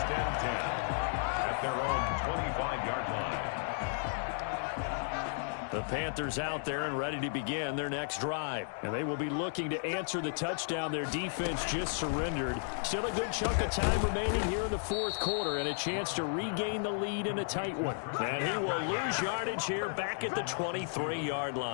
and 10 at their own 25-yard line. The Panthers out there and ready to begin their next drive. And they will be looking to answer the touchdown their defense just surrendered. Still a good chunk of time remaining here in the fourth quarter and a chance to regain the lead in a tight one. And he will lose yardage here back at the 23-yard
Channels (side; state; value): right; silent; 55 dB below the other